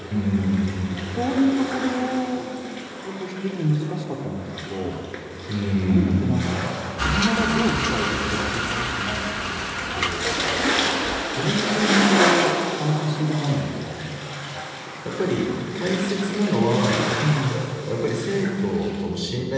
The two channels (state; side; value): identical; both; correlation 1.00